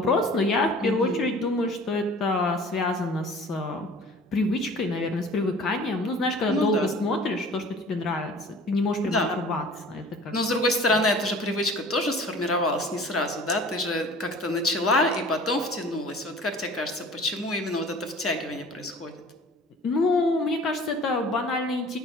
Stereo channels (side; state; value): both; normal; correlation 0.45